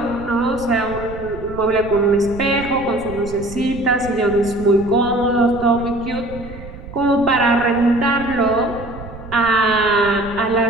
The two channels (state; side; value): noise; right; rumble, 14 dB below the sound